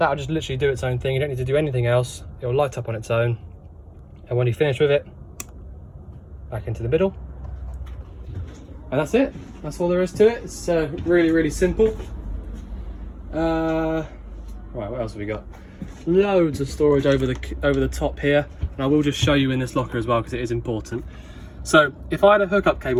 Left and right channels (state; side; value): identical; both; correlation 1.00